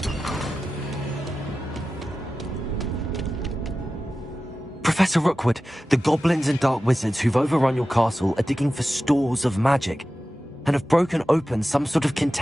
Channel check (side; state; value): both; normal; correlation 0.94